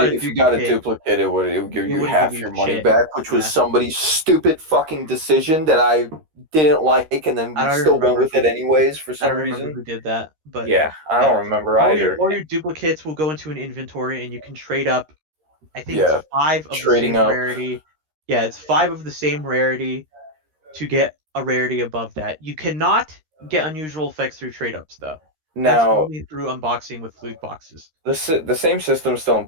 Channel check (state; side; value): late; left; 13 ms